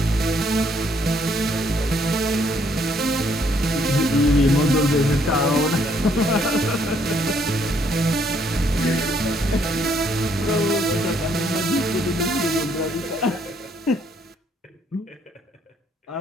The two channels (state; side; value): normal; both; correlation 0.68